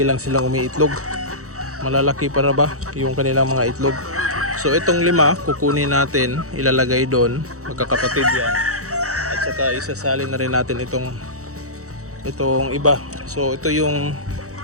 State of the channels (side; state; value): left; late; 0.65 ms